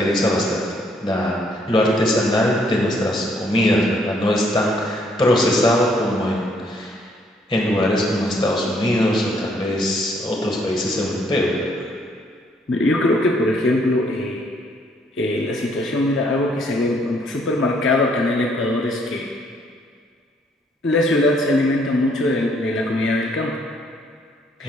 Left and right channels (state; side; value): normal; both; correlation 0.67